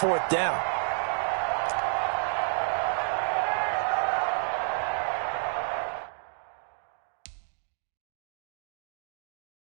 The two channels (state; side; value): silent; left; digital silence